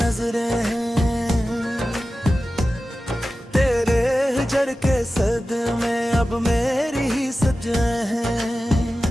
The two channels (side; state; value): both; normal; correlation 0.94